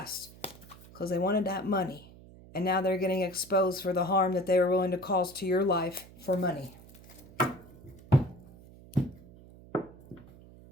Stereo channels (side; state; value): right; noise; hum, 21 dB below the sound